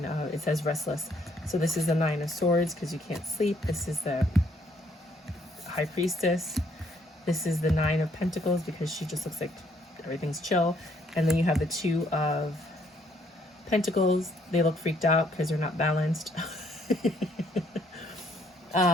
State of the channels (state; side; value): normal; both; correlation 0.67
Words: of, it says restless. So this is the 9 of Swords, because you can't sleep. This is the High Priestess. This is the 9 of Pentacles, because she just looks like everything's chill. And then you have the 2 of Pentacles. They look freaked out because they're not balanced.